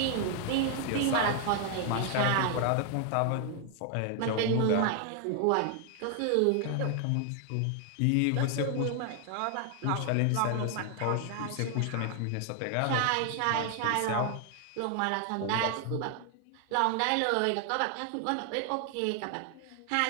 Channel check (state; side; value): different; both; correlation 0.00